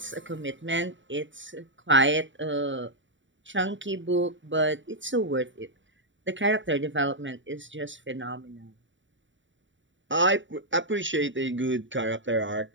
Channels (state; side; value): late; left; 0.55 ms